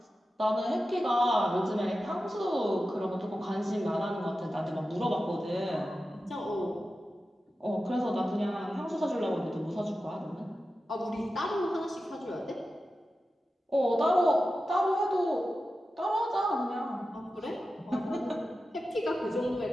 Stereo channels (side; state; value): both; normal; correlation 0.92